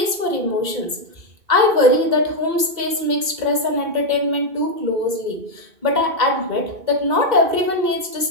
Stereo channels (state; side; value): late; left; 2.1 ms